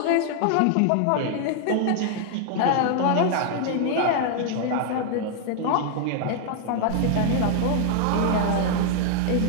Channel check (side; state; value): both; different; correlation 0.00